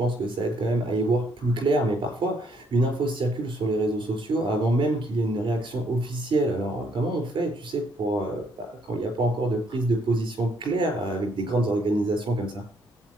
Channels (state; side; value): normal; both; correlation 0.69